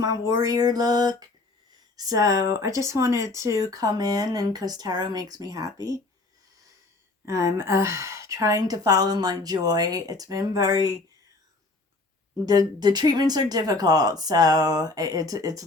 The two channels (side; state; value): right; quieter; 3.2 dB